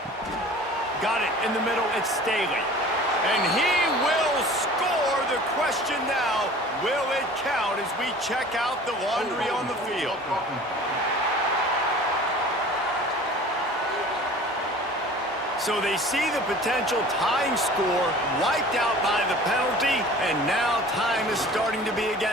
Got it in the middle, it's Staley. And he will score. The question now, will it count as we check out the laundry on the field? So they see the potential tying score wiped out by the penalty, and now time is starting to be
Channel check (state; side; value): normal; both; correlation 0.44